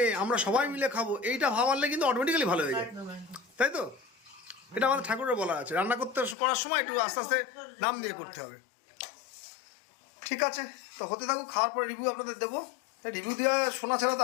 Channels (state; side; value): drops out; right; at 6.4 s